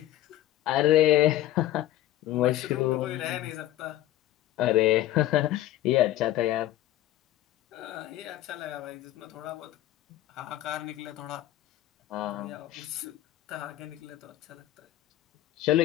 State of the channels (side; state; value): right; quieter; 14.1 dB